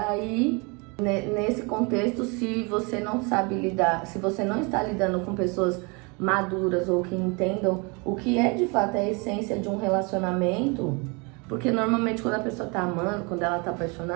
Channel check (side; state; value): left; quieter; 30.1 dB